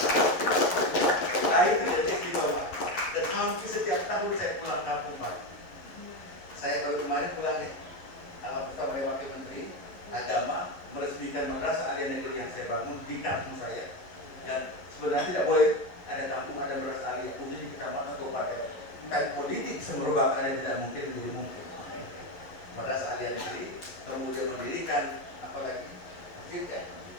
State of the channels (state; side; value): late; right; 11 ms